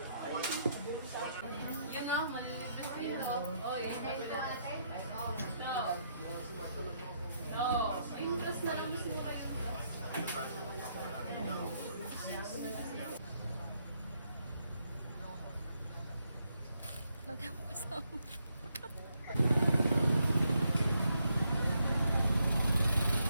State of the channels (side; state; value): both; inverted; correlation -0.76